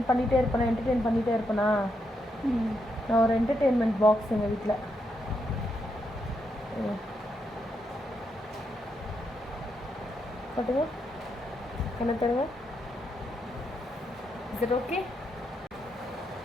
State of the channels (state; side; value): normal; both; correlation 0.81